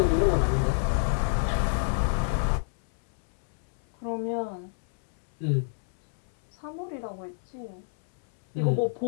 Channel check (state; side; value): silent; right; 60 dB below the other